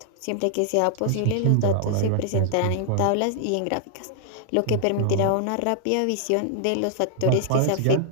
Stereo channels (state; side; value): different; both; correlation -0.01